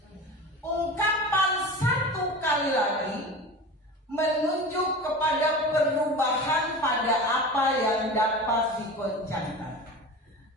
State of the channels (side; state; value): both; normal; correlation 0.32